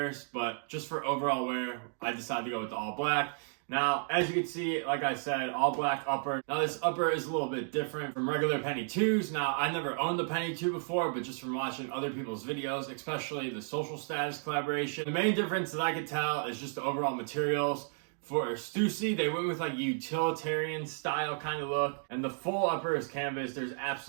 But just for overall wear, I decided to go with the all black. Now, as you can see, like I said, all black upper. Now, this upper is a little bit different from regular Penny 2s. Now, I never owned the Penny 2 before, but just from watching other people's videos, especially the Social Status collaboration, the main difference that I could tell is just the overall materials. For Stussy, they went with like utilitarian style kind of look, and the full upper is canvas. There's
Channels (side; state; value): left; silent; 56 dB below the other